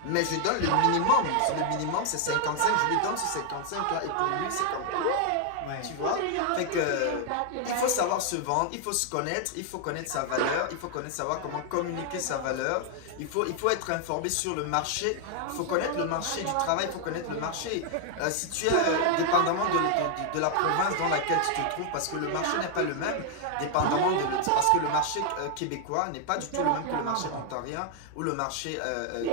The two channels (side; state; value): both; different; correlation 0.00